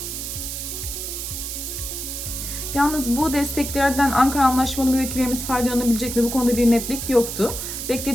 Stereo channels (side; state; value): right; noise; hiss, 6 dB below the sound